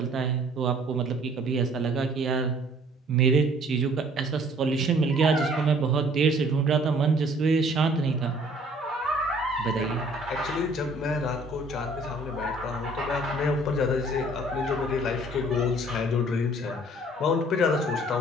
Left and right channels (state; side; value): normal; both; correlation 0.56